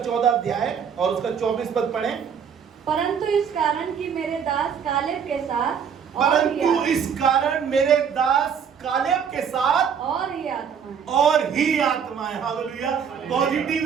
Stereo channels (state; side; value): quieter; left; 7.3 dB